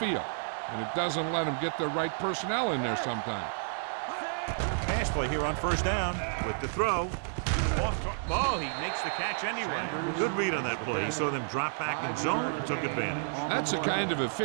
and it doesn't let them get the right personnel in there sometimes. Pass play here on first down with the throw. Oh, he makes the catch anyway. Good read on that play. He saw them drop back in zone and took advantage. That's the kind of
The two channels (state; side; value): silent; left; digital silence